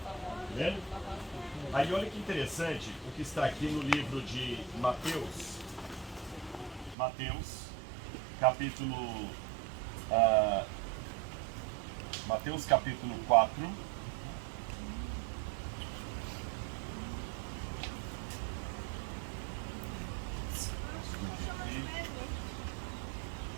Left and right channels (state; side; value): drops out; left; at 7.0 s